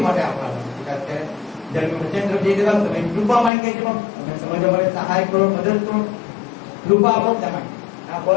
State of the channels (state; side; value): drops out; right; at 3.5 s